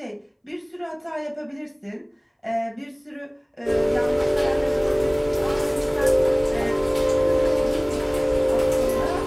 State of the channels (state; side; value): identical; both; correlation 1.00